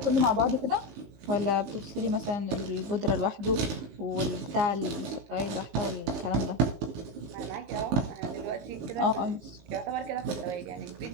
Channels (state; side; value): late; left; 19 ms